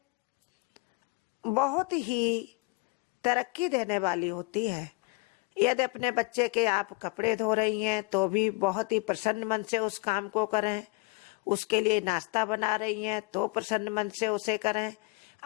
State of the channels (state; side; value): quieter; right; 26.7 dB